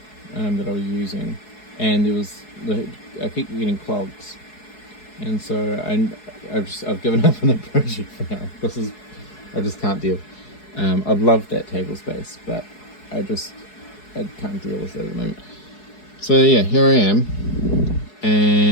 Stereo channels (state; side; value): late; right; 4.7 ms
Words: that I was using, and I keep getting clogs, and so I've given up on the project for now. I just can't deal. I'd love that table space, but I can't deal with it at the moment. So yeah, here I am,